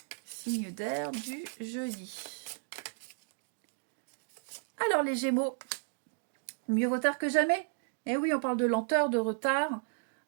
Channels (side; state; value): left; silent; digital silence